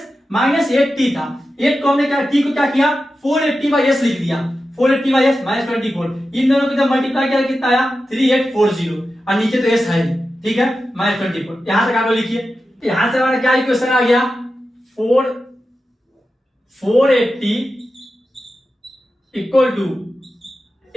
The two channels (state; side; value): normal; both; correlation 0.92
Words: minus 8t था, 8 को हमने क्या t को क्या किया 480 बाई s लिख दिया, 480 बाई s माइनस 24, इन दोनों को जब मल्टीप्लाई किया कितना आया 3840, और नीचे तो s है, ठीक है, माइनस 24। यहां तक आप लिखिए, यहां से हमारा क्या इक्वेशन आ गया, 480 equal to